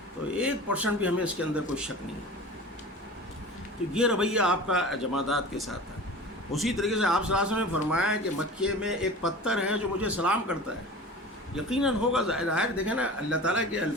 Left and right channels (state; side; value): normal; both; correlation 0.36